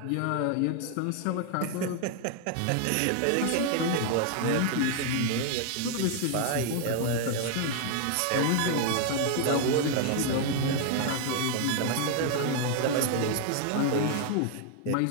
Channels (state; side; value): different; both; correlation 0.00